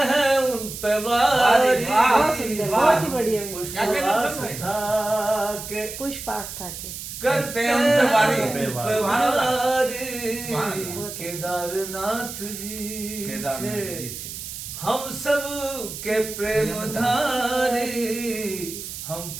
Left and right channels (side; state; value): right; noise; hiss, 9 dB below the sound